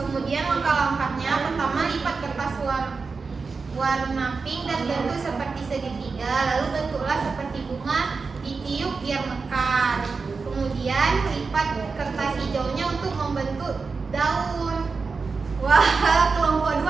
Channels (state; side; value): quieter; left; 4.6 dB